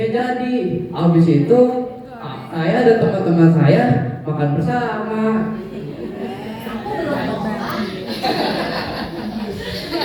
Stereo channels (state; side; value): identical; both; correlation 1.00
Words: jadi. Habis itu saya dan teman-teman saya makan bersama.